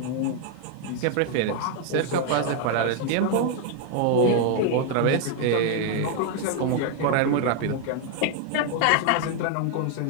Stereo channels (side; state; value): both; different; correlation 0.00